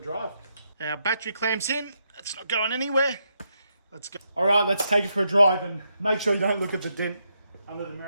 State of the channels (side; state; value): both; inverted; correlation -0.81